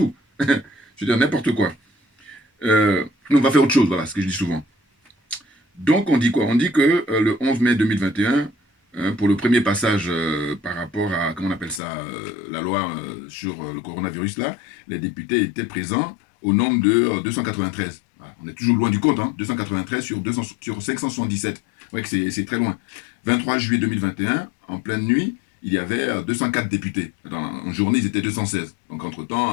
Je veux dire, n'importe quoi. On va faire autre chose, voilà, ce que je dis souvent. Donc, on dit quoi? On dit que le 11 mai 2021, pour le premier passage par rapport à, comment on appelle ça, la loi sur le coronavirus, là, les députés étaient présents au nombre de 293. Voilà. On est toujours loin du compte, hein, 293 sur 577. Ouais, c'est très loin. 23 juillet 2021, en pleine nuit, il y avait 204 députés. En journée, ils étaient 216. Donc,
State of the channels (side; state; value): right; drops out; at 11.8 s